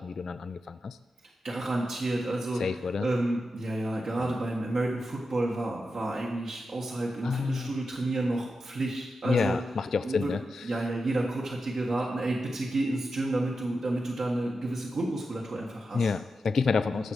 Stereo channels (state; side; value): normal; both; correlation 0.89